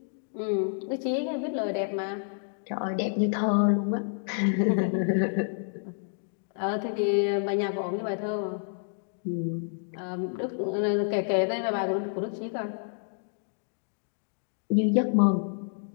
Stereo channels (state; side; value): silent; right; digital silence